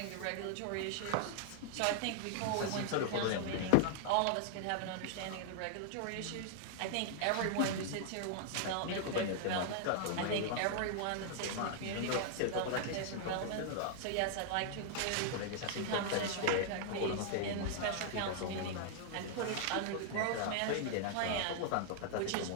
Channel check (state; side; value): different; both; correlation -0.01